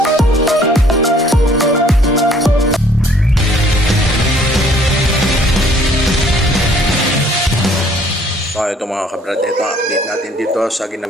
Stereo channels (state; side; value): normal; both; correlation 0.59